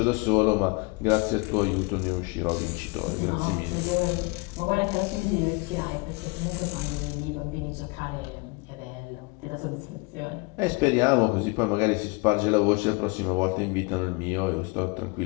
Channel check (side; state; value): right; quieter; 27.6 dB